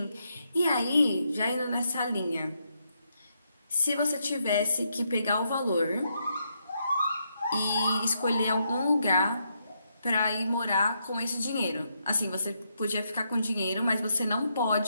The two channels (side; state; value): both; inverted; correlation -0.79